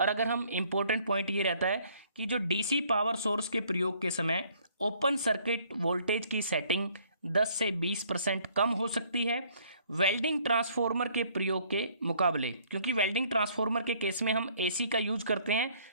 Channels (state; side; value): inverted; both; correlation -0.62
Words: अगर हम इम्पोर्टेंट पॉइंट ये रहता है कि जो डीसी पावर सोर्स के प्रयोग के समय ओपन सर्किट वोल्टेज की सेटिंग 10 से 20% कम हो सकती है वेल्डिंग ट्रांसफार्मर के प्रयोग के मुकाबले, क्योंकि वेल्डिंग ट्रांसफार्मर के केस में हम एसी का यूज करते हैं